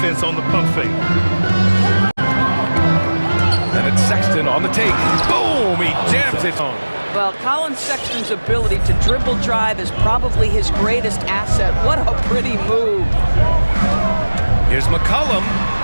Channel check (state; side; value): inverted; both; correlation -1.00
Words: on the pump fake. And it's Sexton on the take. Boom! He jams it home. Well, Colin Sexton's ability to dribble drive is probably his greatest asset. What a pretty move. Here's McCollum.